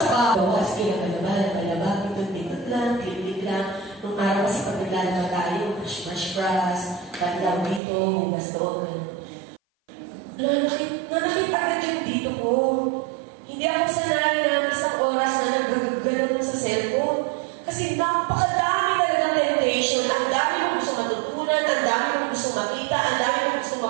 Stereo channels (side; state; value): left; drops out; at 7.8 s